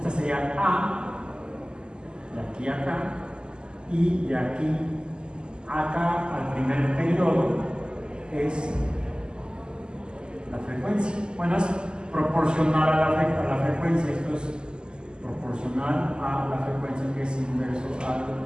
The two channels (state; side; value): late; left; 0.047 ms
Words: sería a, de aquí a acá, y de aquí a acá al primer periodo es la frecuencia. Bueno, es proporcional a la frecuencia. Esto es proporcional a la frecuencia, que es inverso a